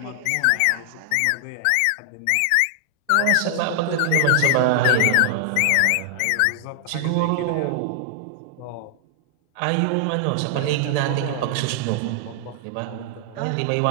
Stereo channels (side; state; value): both; different; correlation 0.00